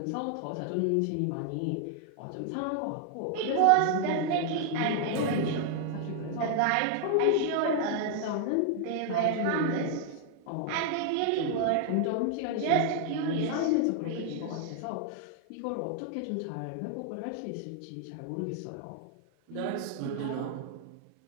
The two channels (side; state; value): both; different; correlation 0.00